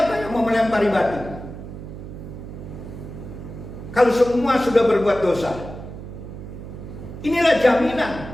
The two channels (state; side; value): noise; right; hum, 11 dB below the sound